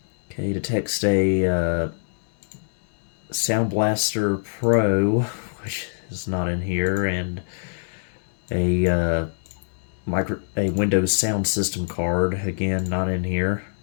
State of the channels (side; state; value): right; silent; digital silence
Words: Okay, to text a Sound Blaster Pro, which is not in here, and a Windows sound system card, again not in here.